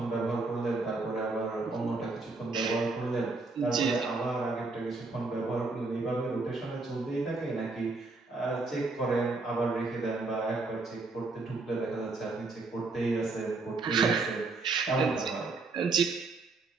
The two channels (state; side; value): quieter; left; 3.6 dB